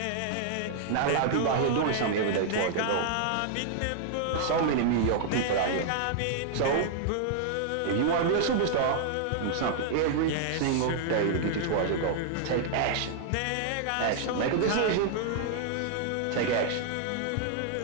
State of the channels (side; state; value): both; different; correlation -0.01